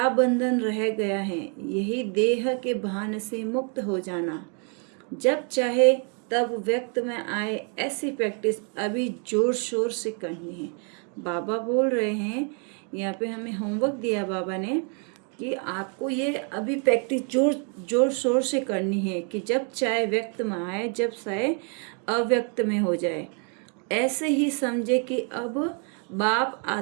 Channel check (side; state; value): left; quieter; 39.7 dB